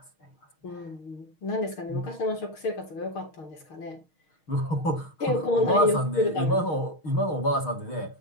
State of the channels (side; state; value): right; late; 6.4 ms